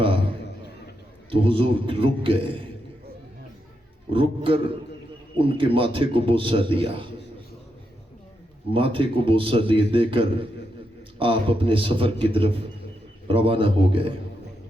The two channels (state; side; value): normal; both; correlation 0.83